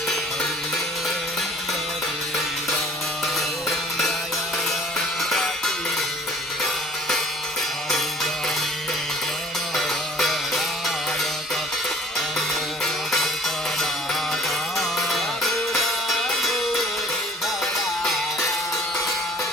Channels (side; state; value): both; normal; correlation 0.53